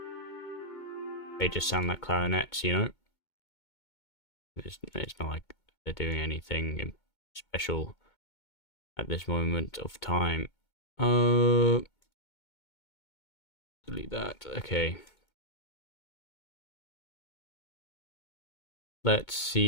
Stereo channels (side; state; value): right; late; 2.2 ms